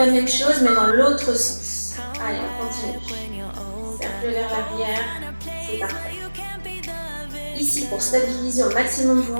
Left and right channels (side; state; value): both; inverted; correlation -1.00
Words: même chose mais dans l'autre sens. Allez, on continue. Cercle vers l'arrière, c'est parfait. Ici, pour stabiliser au maximum vos